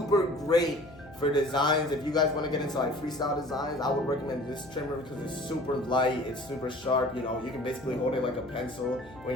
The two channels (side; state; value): left; noise; hum, 20 dB below the sound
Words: great for designs. If you guys want to get into like freestyle designs, I would recommend this trimmer because it's super light, it's super sharp. You can basically hold it like a pencil